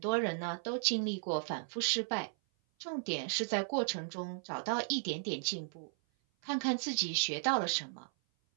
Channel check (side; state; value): left; silent; 54 dB below the other